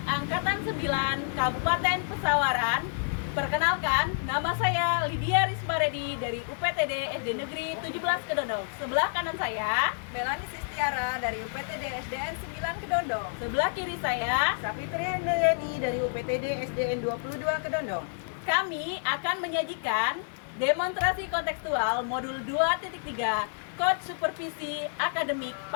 Angkatan 9 Kabupaten Pesawaran. Perkenalkan, nama saya Lydia Rismaredi dari UPTD SD Negeri 17 Kedondong. Sebelah kanan saya Melani Sistiara dari UPTD SDN 9 Kedondong. sebelah kiri saya. Sapitri Handayani dari UPTD SDN 22 Kedondong. Kami akan menyajikan demonstrasi kontekstual modul 2.3 Coach Supervisi Akademik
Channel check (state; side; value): silent; right; digital silence